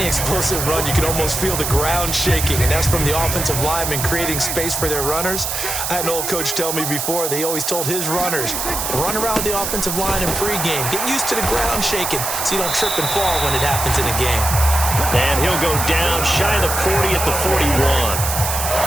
explosive run, you can almost feel the ground shaking, and that's from the offensive linemen creating space for their runners. I had an old coach tell me before, they always told his runners, run around the offensive line in pregame. Get used to the ground shaking so you don't trip and fall when it happens in a game. And he'll go down shy of the 40 at the 41.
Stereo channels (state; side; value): noise; right; hiss, 2 dB below the sound